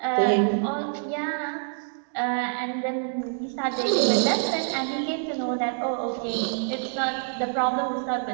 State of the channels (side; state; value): left; silent; 61 dB below the other